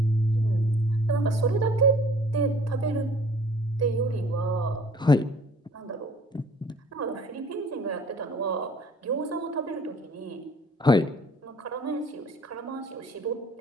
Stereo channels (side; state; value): both; normal; correlation 0.54